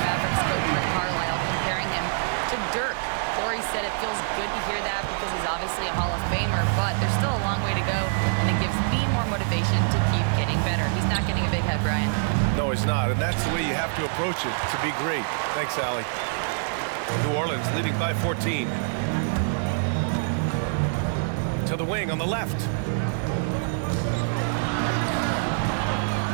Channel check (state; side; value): silent; left; digital silence